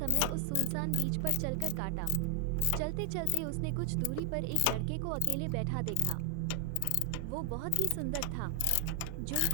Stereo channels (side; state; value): both; different; correlation 0.00